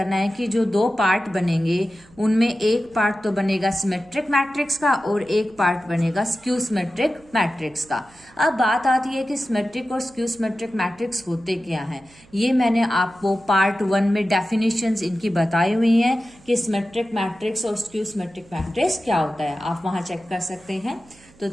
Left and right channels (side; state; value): right; noise; hum, 27 dB below the sound